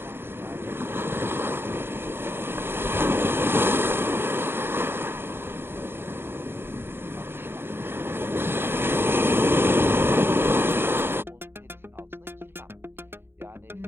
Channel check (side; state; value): left; late; 0.11 ms